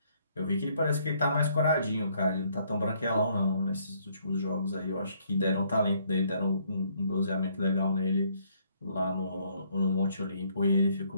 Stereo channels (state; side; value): inverted; both; correlation -0.67